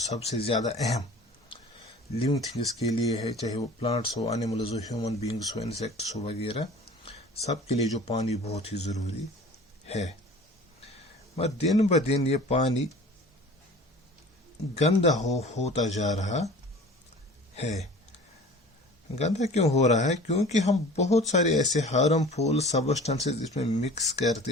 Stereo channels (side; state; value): both; normal; correlation 0.43